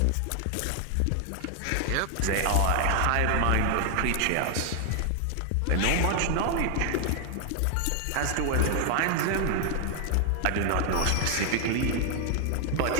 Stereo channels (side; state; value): both; different; correlation 0.00